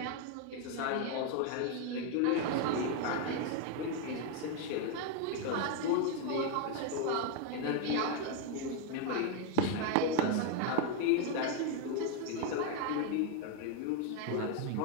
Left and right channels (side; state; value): both; different; correlation 0.01